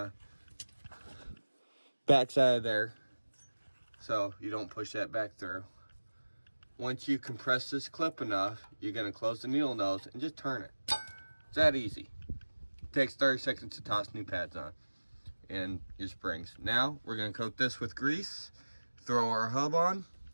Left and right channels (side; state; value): both; inverted; correlation -1.00